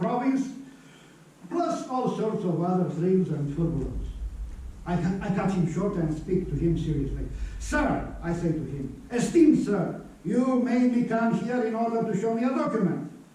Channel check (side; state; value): both; identical; correlation 1.00